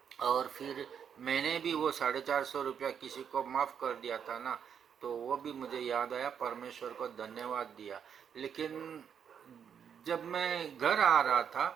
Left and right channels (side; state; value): left; quieter; 7.8 dB